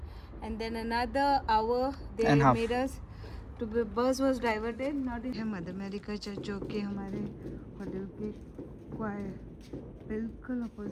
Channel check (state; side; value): identical; both; correlation 1.00